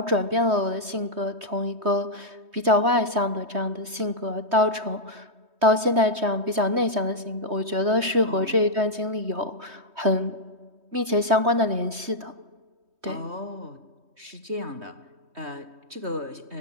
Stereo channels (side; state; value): left; late; 3.2 ms